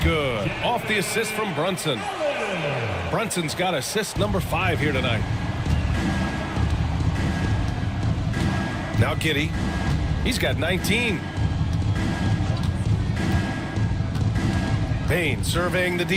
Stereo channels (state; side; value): identical; both; correlation 1.00